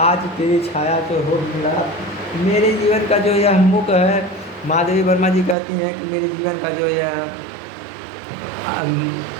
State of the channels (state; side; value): drops out; left; at 5.6 s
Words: तेरी छाया तो हो मिला। मेरे जीवन का जो यह मुख है, महादेवी वर्मा जी कहती हैं कि मेरे जीवन का जो यह